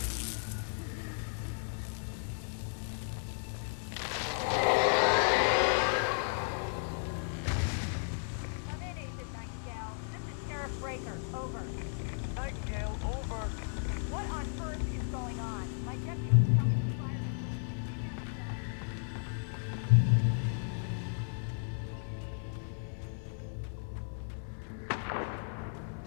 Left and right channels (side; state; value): right; silent; 55 dB below the other